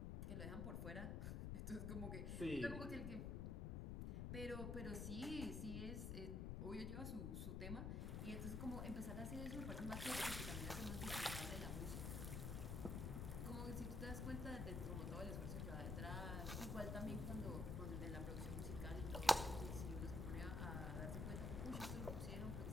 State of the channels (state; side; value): noise; left; rumble, 1 dB below the sound